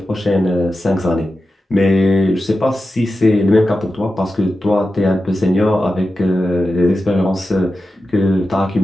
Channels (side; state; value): both; normal; correlation 0.92